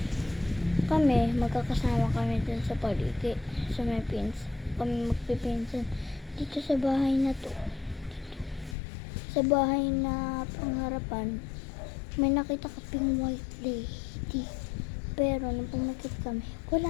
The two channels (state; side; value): drops out; right; at 8.8 s